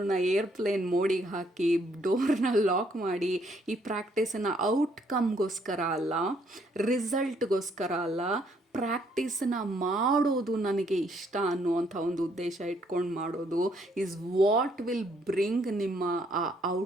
ಏರ್ಪ್ಲೇನ್ ಮೋಡಿಗೆ ಹಾಕಿ ಡೋರ್ನ ಲಾಕ್ ಮಾಡಿ ಈ ಪ್ರಾಕ್ಟೀಸನ್ನು ಔಟ್ಕಮ್ಗೋಸ್ಕರ ಅಲ್ಲ, ರಿಸಲ್ಟ್ಗೋಸ್ಕರ ಅಲ್ಲ, ಪ್ರಾಕ್ಟೀಸನ್ನ ಮಾಡೋದು ನನಗೆ ಇಷ್ಟ ಅನ್ನುವಂಥ ಒಂದು ಉದ್ದೇಶ ಇಟ್ಕೊಂಡು ಮಾಡೋದು ಈಸ್ ವಾಟ್ ವಿಲ್ ಬ್ರಿಂಗ್ ನಿಮ್ಮ ಆ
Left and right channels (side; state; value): both; normal; correlation 0.69